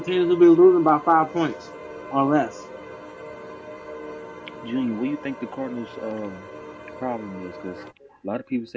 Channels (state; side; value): identical; both; correlation 1.00